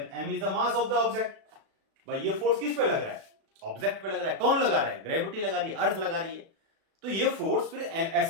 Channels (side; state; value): left; late; 37 ms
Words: m is the mass of the object. भाई ये फोर्स किस पे लग रहा है, ऑब्जेक्ट पे लग रहा है, कौन लगा रहा है, ग्रेविटी लगा रही है, अर्थ लगा रही है। तो ये फोर्स फिर